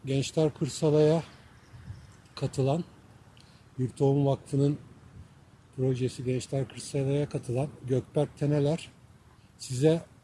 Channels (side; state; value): both; identical; correlation 1.00